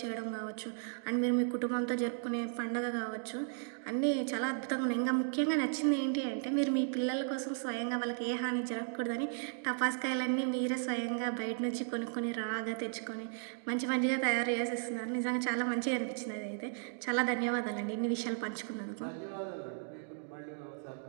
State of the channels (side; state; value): left; silent; digital silence